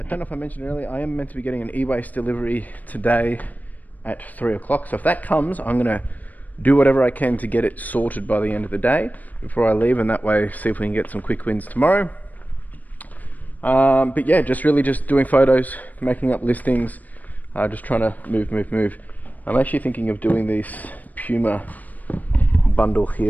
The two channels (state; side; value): late; right; 0.079 ms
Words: don't know if I mentioned earlier, I am meant to be getting an e-waste delivery today at 3 o'clock. So if that comes, I'm going to do whatever I can to get it sorted by the end of the day before I leave, and that way see if we can get some quick wins tomorrow. But yeah, just doing photos, making up listings, just trying to move. I'm actually thinking of doing this Puma bundle